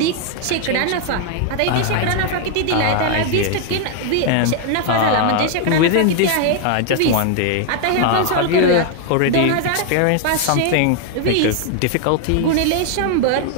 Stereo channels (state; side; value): different; both; correlation 0.00